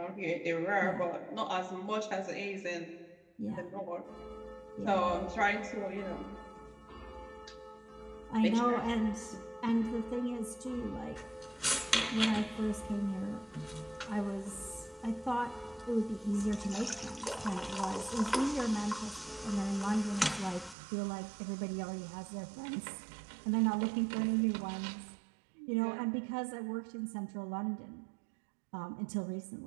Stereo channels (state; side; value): drops out; left; at 20.8 s